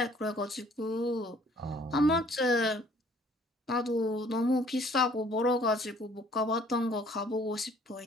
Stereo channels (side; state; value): both; normal; correlation 0.58